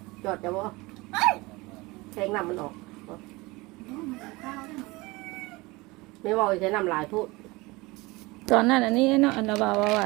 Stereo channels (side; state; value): left; quieter; 22.9 dB